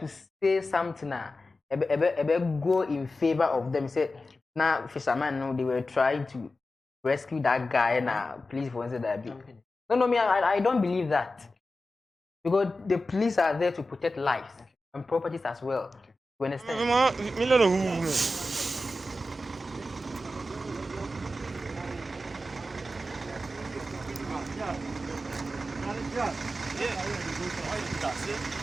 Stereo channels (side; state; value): both; normal; correlation 0.93